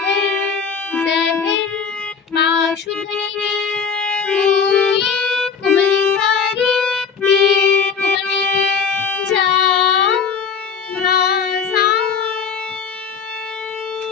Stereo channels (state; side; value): quieter; right; 6.2 dB